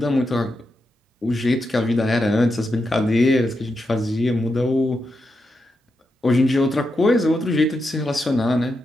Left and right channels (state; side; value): normal; both; correlation 0.86